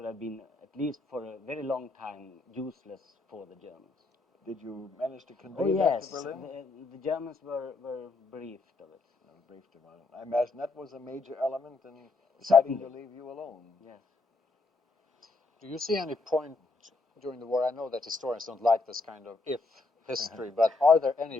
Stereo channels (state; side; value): quieter; right; 3.5 dB